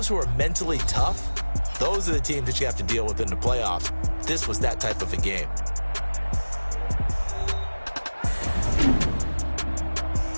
who are mentally tough, those are the teams that you have to deal with in the playoffs. This was that type of a game.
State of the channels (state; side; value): inverted; both; correlation -1.00